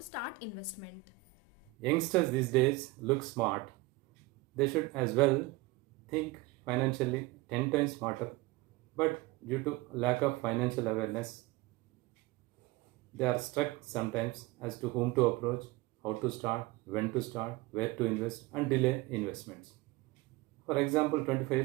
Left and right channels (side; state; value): left; quieter; 18.5 dB